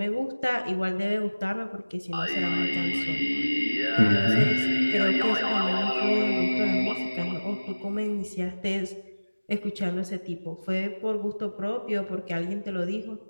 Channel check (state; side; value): inverted; both; correlation -1.00